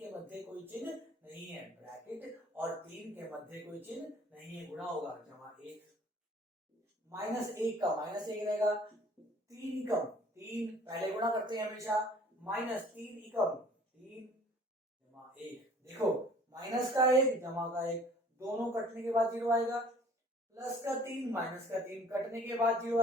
मध्य कोई चिन्ह नहीं है, ब्रैकेट और 3 के मध्य कोई चिन्ह नहीं है, गुणा होगा जमा 1, माइनस 1 का माइनस 1 रहेगा, 3 एकम 3, पहले गुणा करते हैं हमेशा, माइनस 3 एकम 3 जमा 1, देखो माइनस का 1 जमा का 1 दोनों कटने के बाद 0 आएगा, प्लस का 3 माइनस का 3 कटने के बाद 0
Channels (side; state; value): both; normal; correlation 0.53